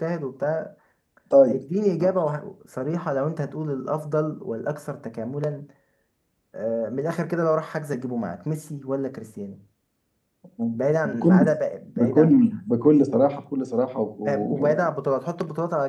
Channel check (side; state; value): both; identical; correlation 1.00